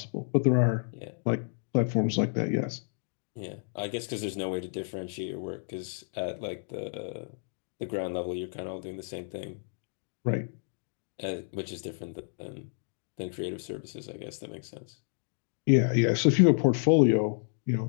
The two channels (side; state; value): right; silent; digital silence